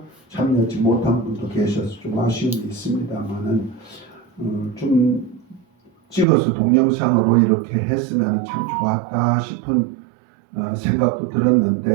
참여하지 못한 분도 계셔서 좀 아쉬움이 있습니다만은 좀 찍어서 동영상으로 이렇게 했으면 참 좋았다 싶은 생각도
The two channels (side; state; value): left; drops out; at 6.2 s